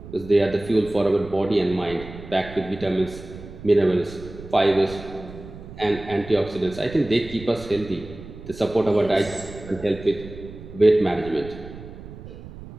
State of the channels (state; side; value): noise; right; rumble, 15 dB below the sound